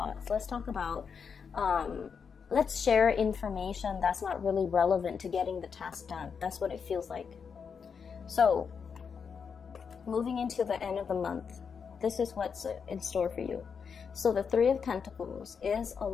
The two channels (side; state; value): right; quieter; 6.3 dB